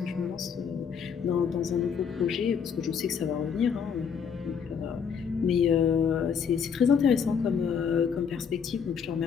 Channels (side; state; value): right; quieter; 6.8 dB